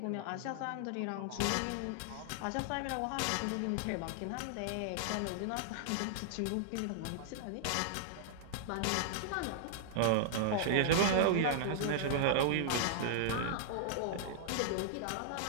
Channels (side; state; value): both; different; correlation -0.01